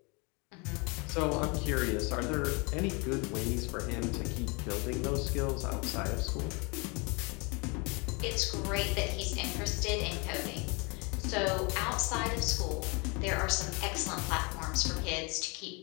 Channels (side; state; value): right; quieter; 30.0 dB